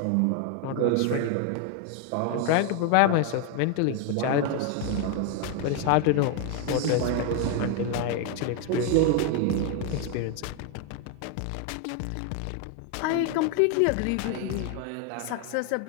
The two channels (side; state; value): both; different; correlation 0.01